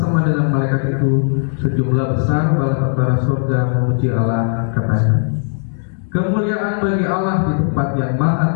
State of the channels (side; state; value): right; silent; 68 dB below the other